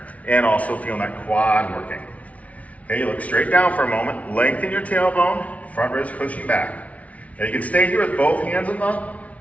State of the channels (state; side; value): late; right; 0.067 ms